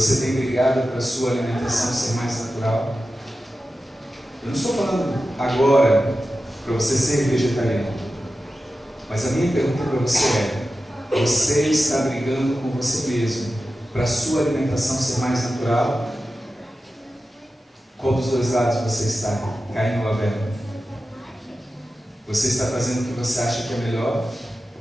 tem brigado para a sua alimentação ser mais natural? Eu não estou falando agora para você ser vegetariano. Mas a minha pergunta para você é: você está brigando com você mesmo para a sua alimentação ser mais natural? Qual dos dois lados você está? Caim ou Abel? Você está fazendo o que você acha que é melhor?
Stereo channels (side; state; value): both; normal; correlation 0.93